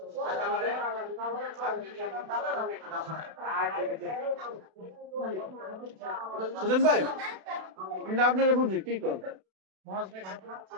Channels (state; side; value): late; left; 32 ms